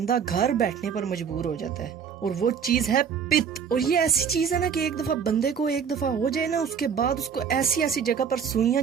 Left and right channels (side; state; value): left; quieter; 7.2 dB